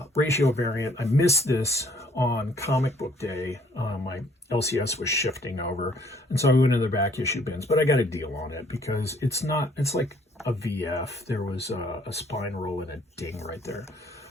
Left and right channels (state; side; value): normal; both; correlation 0.62